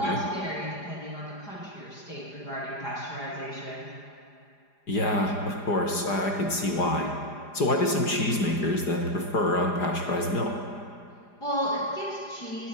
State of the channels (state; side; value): late; right; 4.9 ms